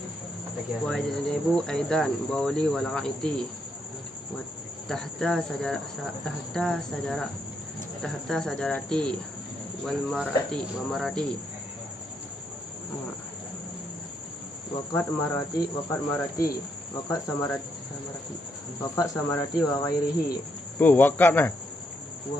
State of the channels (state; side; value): normal; both; correlation 0.77